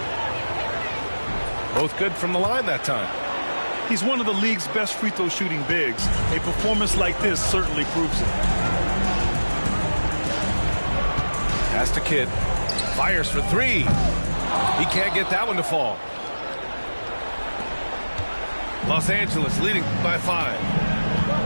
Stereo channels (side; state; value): both; inverted; correlation -1.00